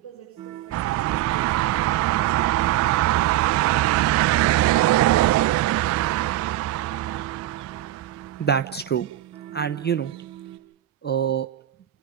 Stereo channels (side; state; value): left; quieter; 13.7 dB